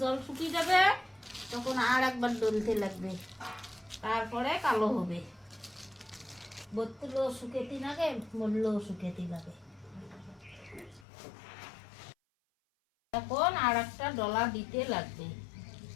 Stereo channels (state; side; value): drops out; right; at 11.1 s